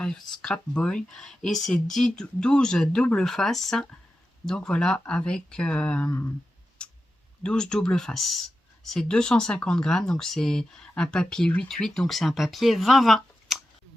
Boy. Et c'est 12 double face. Donc, voilà, avec 12 double face. C'est 250 grammes, donc c'est un papier 8-8, donc c'est un papier 20-20.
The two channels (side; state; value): both; normal; correlation 0.91